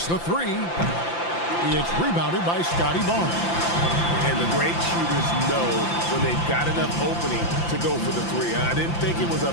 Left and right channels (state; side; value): late; right; 5.8 ms